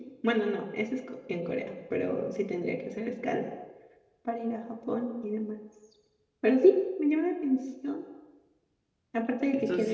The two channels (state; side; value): identical; both; correlation 1.00